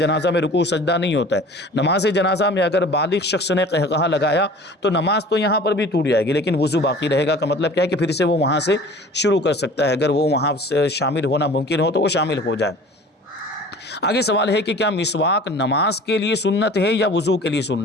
میں رکوع سجدہ نہیں ہوتا ہے، نماز جنازہ میں اگر بالغ شخص نے قہقہا لگایا تو نماز تو یہاں پر بھی ٹوٹ جائے گی، لیکن وضو باقی رہے گا۔ کا مطلب کیا ہے کہ پھر سے وہ وہاں سے شروع کر سکتا ہے، اگر وہ وہاں سے شامل ہونا ممکن ہو تو وہ شامل ہو جائے۔ آگے سوال ہے کہ کیا مسواک نماز کے لیے سنت ہے یا وضو کے لیے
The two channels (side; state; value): both; normal; correlation 0.44